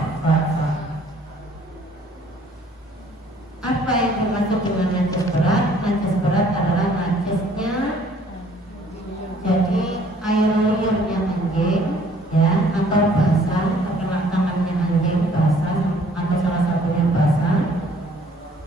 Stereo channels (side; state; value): both; normal; correlation 0.58